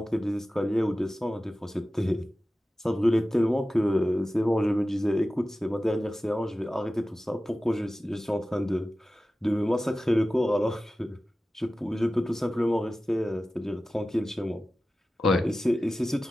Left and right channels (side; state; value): both; normal; correlation 0.95